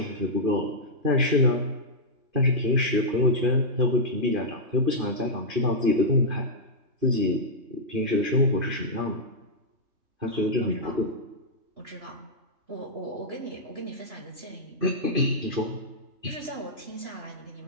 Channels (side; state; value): left; late; 2.6 ms